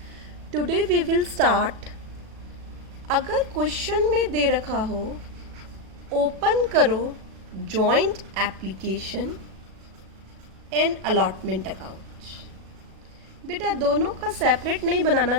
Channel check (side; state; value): left; late; 37 ms